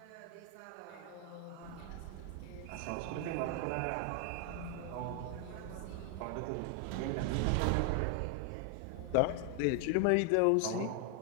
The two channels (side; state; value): both; different; correlation 0.00